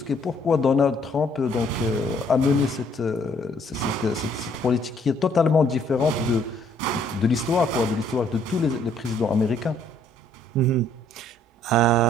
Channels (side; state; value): both; normal; correlation 0.64